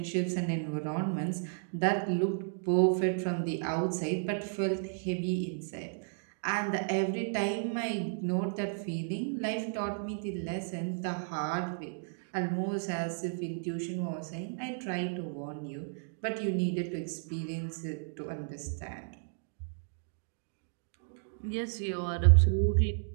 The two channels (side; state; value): left; silent; digital silence